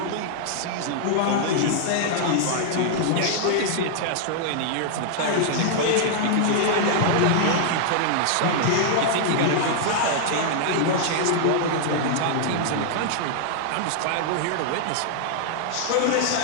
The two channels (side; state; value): both; different; correlation -0.01